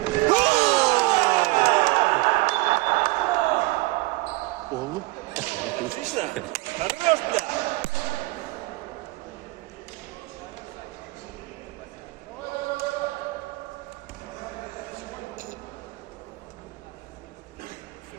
Oğlum. Отлично. Хорош, бля.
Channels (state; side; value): quieter; left; 22.2 dB